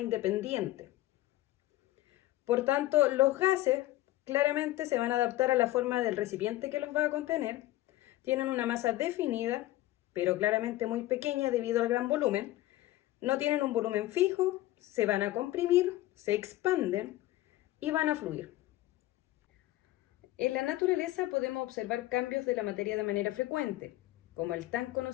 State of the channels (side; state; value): right; quieter; 16.3 dB